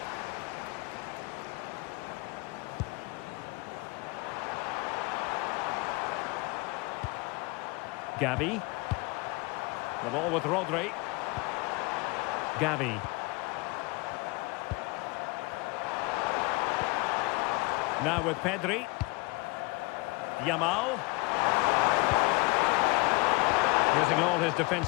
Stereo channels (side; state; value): right; quieter; 25.7 dB